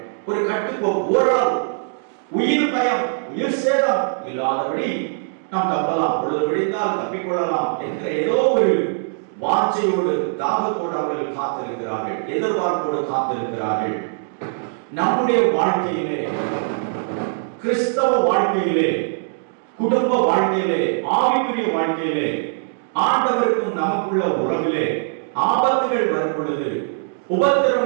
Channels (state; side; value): silent; left; digital silence